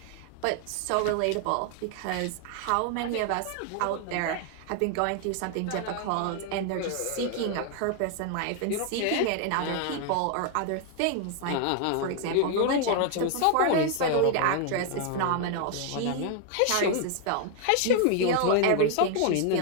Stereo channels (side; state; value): both; different; correlation 0.00